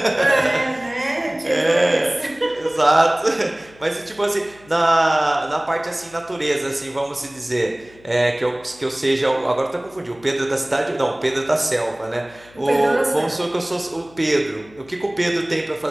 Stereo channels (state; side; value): noise; left; hum, 25 dB below the sound